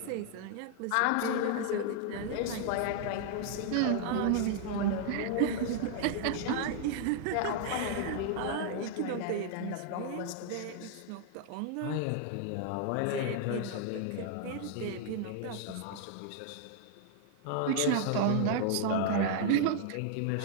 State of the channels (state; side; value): different; both; correlation 0.00